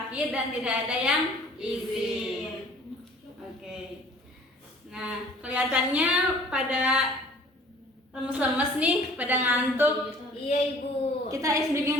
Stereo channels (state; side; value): normal; both; correlation 0.52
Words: dan tidak ada yang izin. Oke. Nah, kelihatannya pada lemes-lemes nih, pada ngantuk. Iya, Ibu. Kita ice